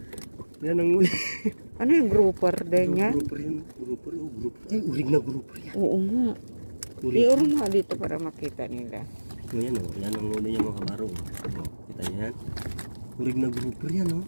Yan ang huli. Ano yung grouper din yan? Grouper yun. Grouper. Ay, urig na grouper yan. Oo nga. Iuro nga dito para makita nila. Yan yan ang huli niya mga kabaro. Kita niyo yan. Urig na grouper yan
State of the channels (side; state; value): both; inverted; correlation -1.00